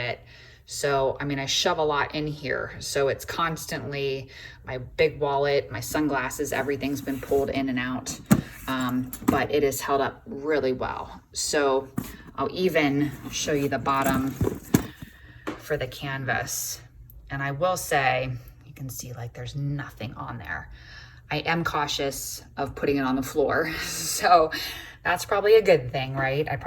So, I mean, I shove a lot in here. So it's constantly my big wallet, my sunglasses, everything's been pulled in and out. But it is held up really well. So I'll even show you the bottom for the canvas. And I will say, you can see like there's nothing on there. I am cautious of putting it on the floor. So that's probably a good thing, right? I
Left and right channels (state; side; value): identical; both; correlation 1.00